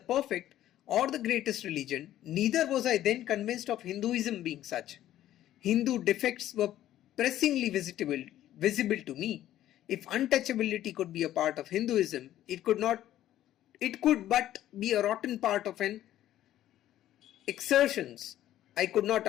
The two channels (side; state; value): right; quieter; 12.9 dB